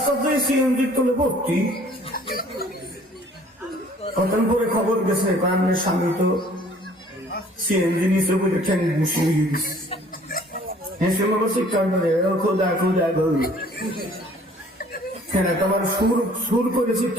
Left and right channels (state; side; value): normal; both; correlation 0.55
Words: দিয়ে সিএনজি তুলে ভর্তি। কতক্ষণ পরে খবর গেছে আপনার স্বামী তো সিএনজি নিচে বলে ঠ্যাং বসিয়ে গেছে। হেসে মনে চিৎকার করে খোদা খোদা গো, হ্যাঁ তোমার সুর করে